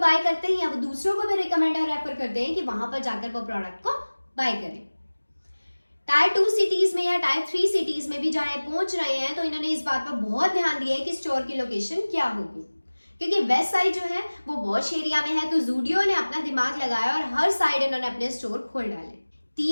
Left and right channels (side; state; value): both; inverted; correlation -1.00